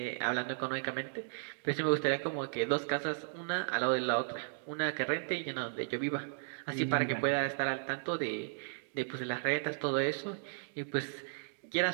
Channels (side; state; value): left; silent; digital silence